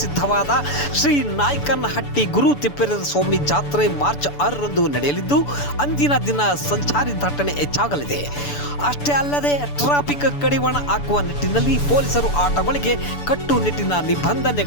ಶ್ರೀ ನಾಯಕನಹಟ್ಟಿ ಗುರು ತಿಪ್ಪೇಸ್ವಾಮಿ ಸ್ವಾಮಿ ಜಾತ್ರೆ ಮಾರ್ಚ್ 6ರಂದು ನಡೆಯಲಿದ್ದು ಅಂದಿನ ದಿನ ಸಂಚಾರಿ ದಟ್ಟಣೆ ಹೆಚ್ಚಾಗಲಿದೆ. ಅಷ್ಟೇ ಅಲ್ಲದೆ ಟ್ರಾಫಿಕ್ ಕಡಿವಾಣ ಹಾಕುವ ನಿಟ್ಟಿನಲ್ಲಿ ಪೊಲೀಸರು ಆಟೋಗಳಿಗೆ ಕಟ್ಟುನಿಟ್ಟಿನ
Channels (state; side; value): late; right; 6.9 ms